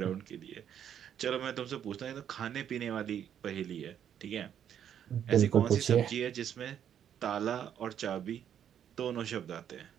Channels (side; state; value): left; quieter; 9.4 dB